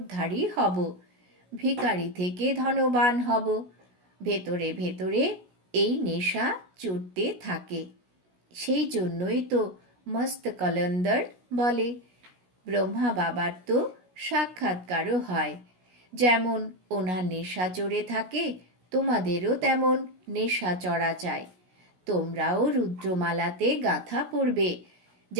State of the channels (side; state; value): left; late; 16 ms